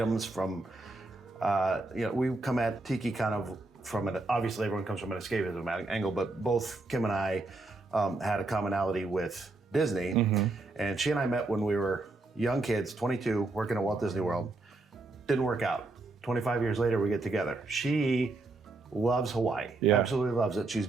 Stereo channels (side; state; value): left; quieter; 3.2 dB